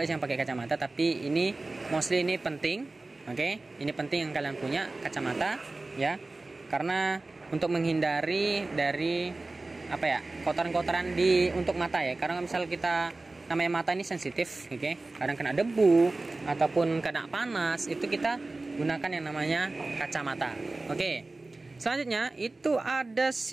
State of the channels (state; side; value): quieter; left; 3.2 dB